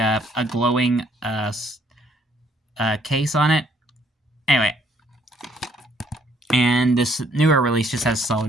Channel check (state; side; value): normal; both; correlation 0.66